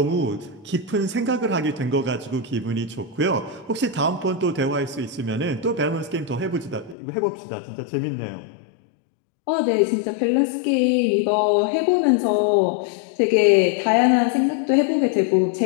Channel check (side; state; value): right; drops out; at 7.0 s